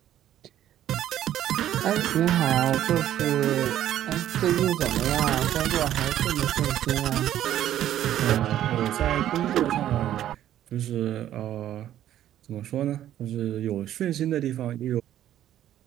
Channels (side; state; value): left; quieter; 11.9 dB